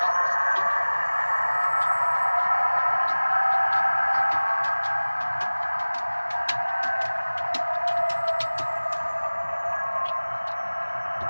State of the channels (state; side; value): inverted; both; correlation -1.00